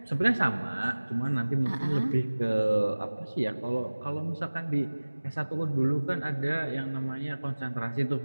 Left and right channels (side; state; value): both; inverted; correlation -1.00